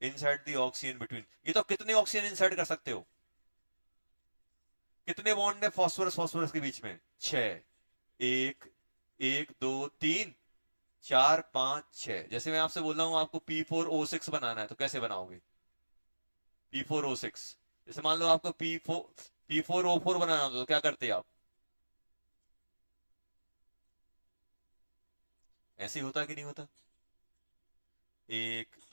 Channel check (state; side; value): inverted; both; correlation -1.00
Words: इंसर्ट द ऑक्सीजन बिटवीन। ये तो कितने ऑक्सीजन इंसर्ट कर सकते हो, कितने बॉन्ड है फॉस्फोरस फॉस्फोरस के बीच में, 6। 1 1 2 3 4 5 6। जैसे मैं आपसे बोल रहा हूं आपको P4O6 बनाना है तो कैसे बनाओगे, P4O6। जैसे मान लो आपको P4O4 बनाना हो तो क्या करते आप, ऐसे ही होता कि नहीं होता, 1